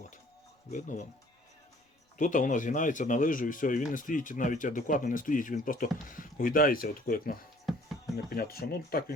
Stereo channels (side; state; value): both; normal; correlation 0.56